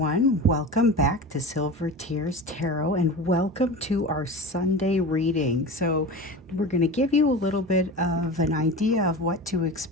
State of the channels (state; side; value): normal; both; correlation 0.31